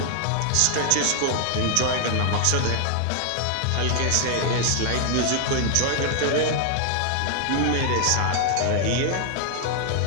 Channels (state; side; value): different; both; correlation 0.00